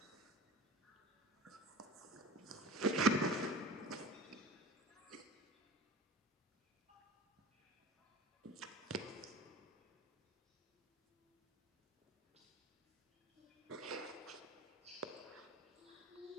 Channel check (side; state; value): both; normal; correlation 0.37